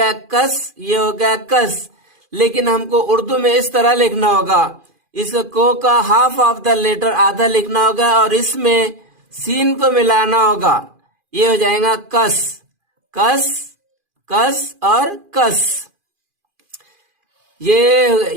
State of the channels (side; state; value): left; late; 2.4 ms